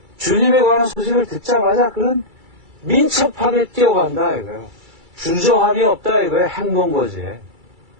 주님에 관한 소식을 듣자마자 그런 민첩하게 뛰어간다 이거예요. 주저함이 없다 이거예요. 행동 거지에.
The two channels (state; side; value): late; left; 2.3 ms